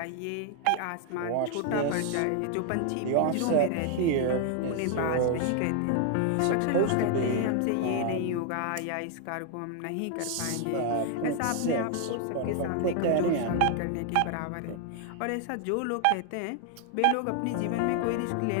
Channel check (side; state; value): both; different; correlation 0.00